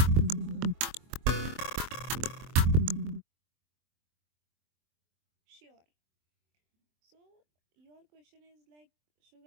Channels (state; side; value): late; left; 23 ms